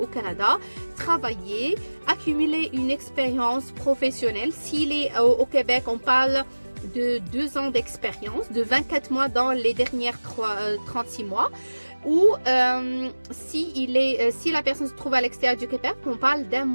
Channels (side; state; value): both; inverted; correlation -1.00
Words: Canada, travailler, accumuler une expérience professionnelle. S'il est au Québec, on parle de 2 ans d'expérience, de 24 mois dans les dernières 36 mois. Ou si la personne se trouve à l'extérieur du Québec, on parle d'1